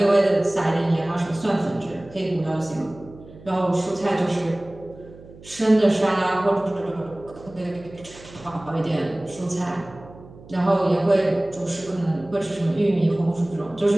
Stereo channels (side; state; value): right; noise; hum, 20 dB below the sound